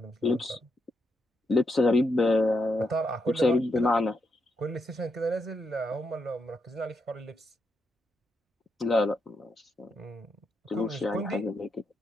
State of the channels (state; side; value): normal; both; correlation 0.81